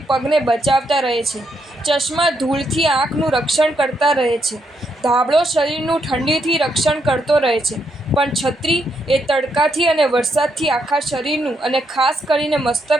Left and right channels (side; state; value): both; normal; correlation 0.78